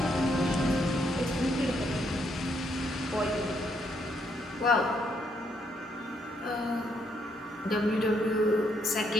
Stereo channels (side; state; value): both; normal; correlation 0.74